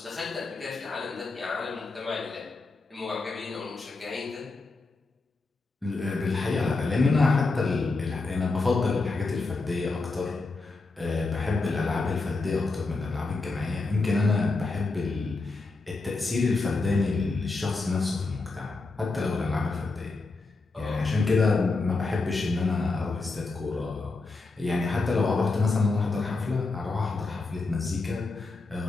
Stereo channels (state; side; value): quieter; right; 3.6 dB